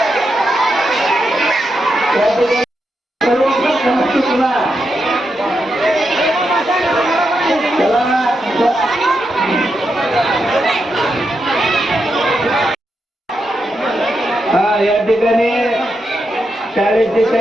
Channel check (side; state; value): both; normal; correlation 0.85